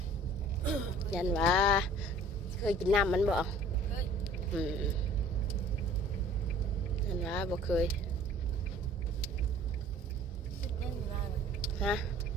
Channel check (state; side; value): normal; both; correlation 0.50